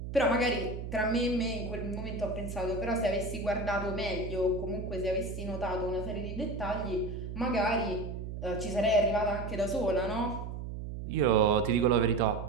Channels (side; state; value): right; noise; hum, 7 dB below the sound